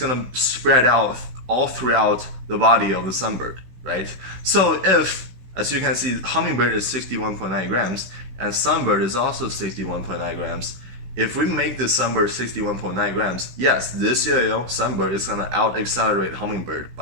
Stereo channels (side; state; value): left; late; 16 ms